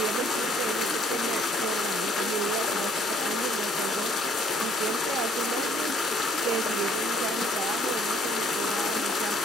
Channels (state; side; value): normal; both; correlation 0.62